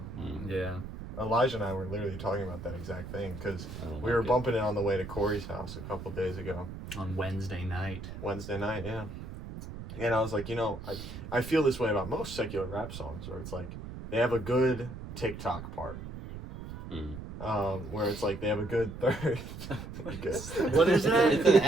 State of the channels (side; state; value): right; noise; rumble, 10 dB below the sound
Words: song. Yeah. Elijah and I were literally talking about that exact thing because I don't we like were it. bumping it on the way to Corey's house a couple days ago, On Wednesday night. Wednesday night, yeah. And I was like, I feel this way about most secular rap songs, where it's like they have a good TikTok part, where it's like they have a good third. Good. What is that? It's an